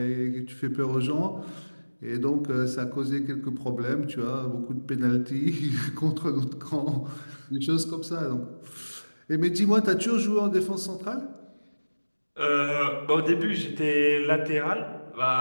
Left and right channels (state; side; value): inverted; both; correlation -1.00